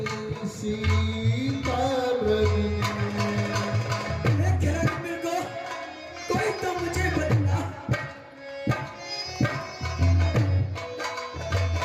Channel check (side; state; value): both; identical; correlation 1.00